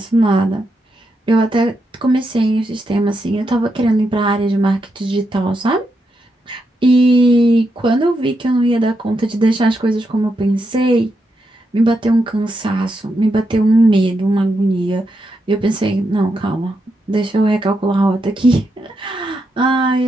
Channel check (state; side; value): normal; both; correlation 0.83